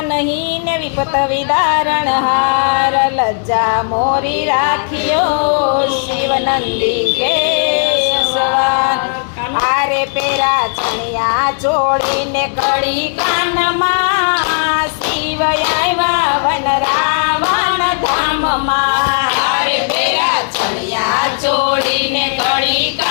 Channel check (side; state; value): right; silent; digital silence